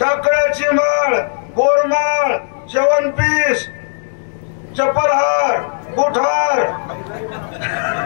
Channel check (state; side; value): silent; right; digital silence